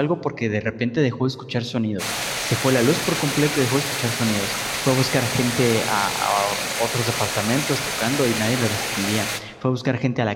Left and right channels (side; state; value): both; identical; correlation 1.00